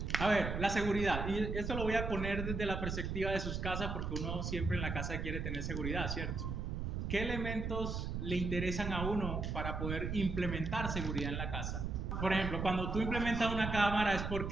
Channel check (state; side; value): noise; right; rumble, 3 dB below the sound